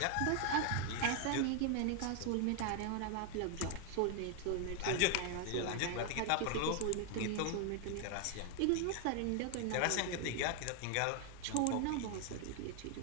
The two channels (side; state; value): both; different; correlation 0.00